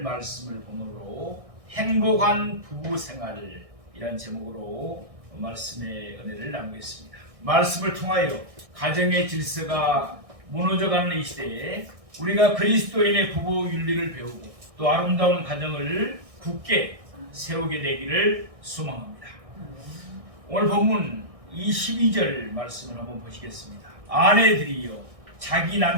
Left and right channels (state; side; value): late; left; 1.6 ms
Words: 말씀을 본문으로 행복한 부부생활이란 제목으로 말씀의 은혜를 나누겠습니다. 말씀을 통하여 가정의 질서가 무너져가는 이 시대에 우리가 그리스도인의 부부 윤리를 배우고 또 아름다운 가정을 굳게 세우게 되기를 소망합니다. 오늘 본문 22절 말씀을 한번 보시겠습니다. 아내들이여 자기